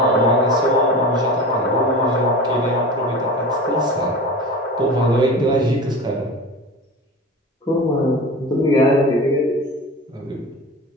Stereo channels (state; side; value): normal; both; correlation 0.32